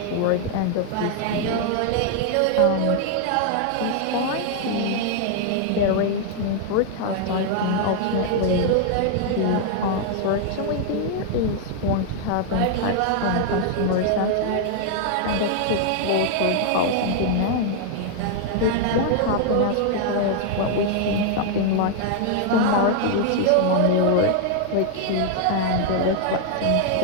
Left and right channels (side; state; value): both; different; correlation 0.00